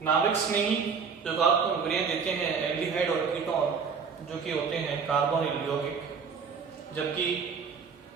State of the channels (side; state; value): left; quieter; 5.8 dB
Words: नाभिक स्नेही योगात्मक अभिक्रियाएं देते हैं एल्डिहाइड और कीटोन जो कि होते हैं कार्बोनिल यौगिक, जबकि